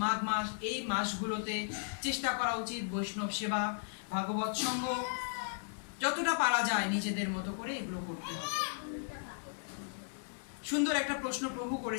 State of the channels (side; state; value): right; silent; digital silence